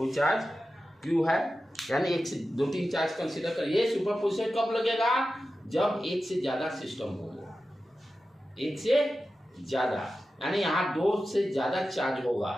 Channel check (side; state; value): both; normal; correlation 0.93